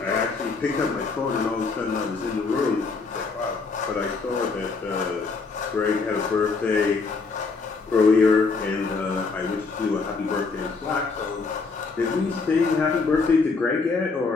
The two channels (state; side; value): quieter; right; 4.4 dB